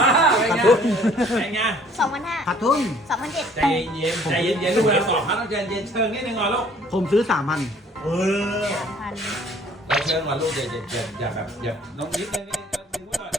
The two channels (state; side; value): normal; both; correlation 0.57